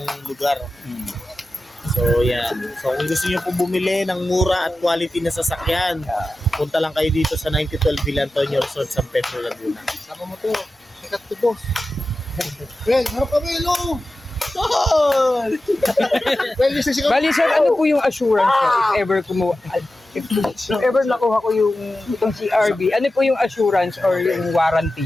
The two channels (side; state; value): both; normal; correlation 0.93